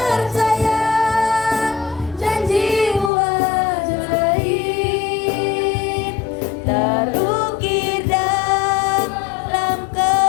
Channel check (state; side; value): drops out; right; at 3.1 s